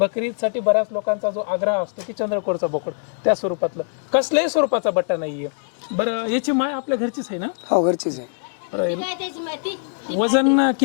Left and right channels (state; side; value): silent; right; digital silence